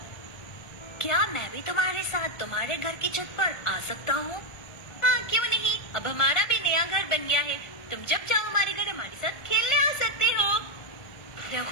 क्या मैं भी तुम्हारे साथ तुम्हारे घर की छत पर आ सकता हूँ? हाँ, क्यों नहीं। अब हमारा भी नया घर बन गया है। तुम जब चाहो हमारे घर हमारे साथ खेलने आ सकते हो।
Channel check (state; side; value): late; right; 1.5 ms